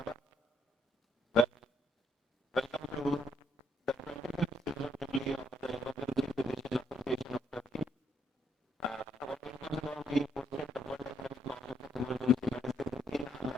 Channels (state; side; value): normal; both; correlation 0.74